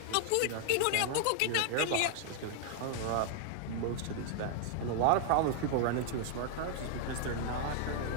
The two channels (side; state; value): both; different; correlation 0.00